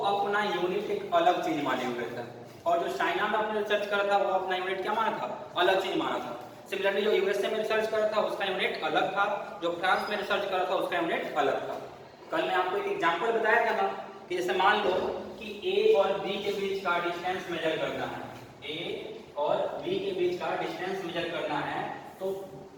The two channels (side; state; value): both; identical; correlation 1.00